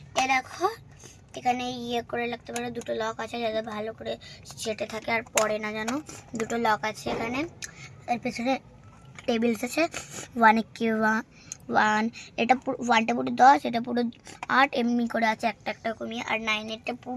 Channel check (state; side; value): identical; both; correlation 1.00